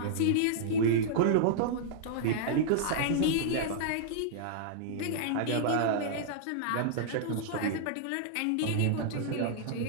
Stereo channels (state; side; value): different; both; correlation -0.01